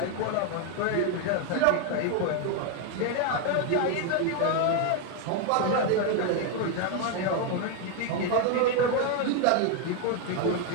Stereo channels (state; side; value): different; both; correlation 0.01